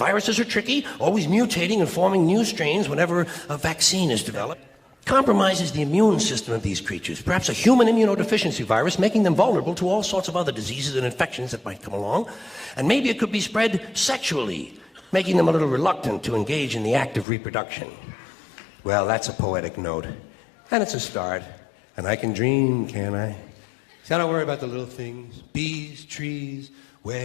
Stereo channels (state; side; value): drops out; right; at 17.2 s